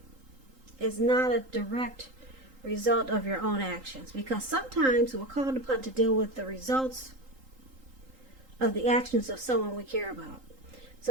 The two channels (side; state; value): left; late; 3.8 ms